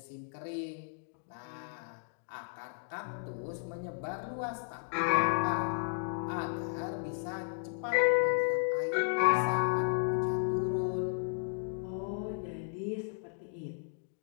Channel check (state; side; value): silent; right; digital silence